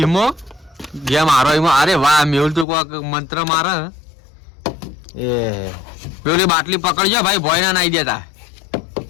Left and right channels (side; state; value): right; drops out; at 2.7 s